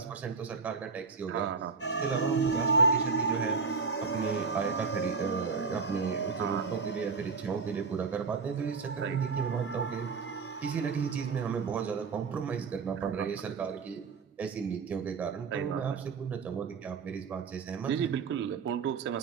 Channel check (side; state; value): left; quieter; 5.0 dB